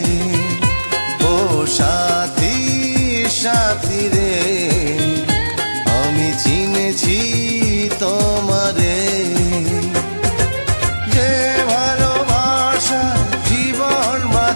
ও সাথী সাথী রে আমি চিনেছি তোমারে। যে ভালোবাসা জীবন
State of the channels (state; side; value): inverted; both; correlation -1.00